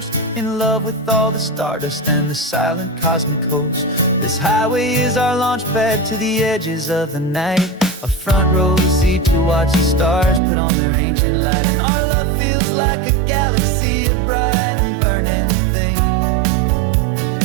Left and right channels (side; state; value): left; drops out; at 10.4 s